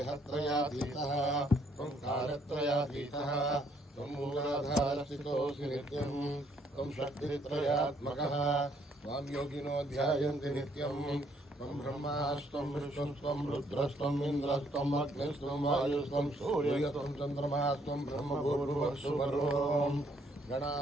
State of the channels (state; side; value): normal; both; correlation 0.68